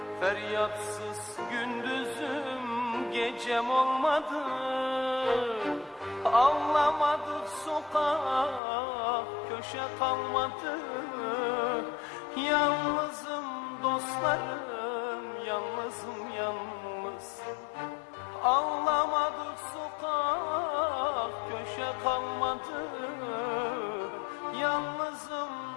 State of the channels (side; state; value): right; drops out; at 8.6 s